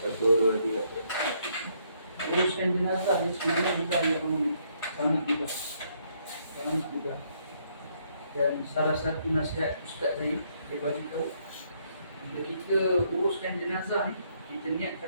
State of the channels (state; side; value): inverted; both; correlation -0.71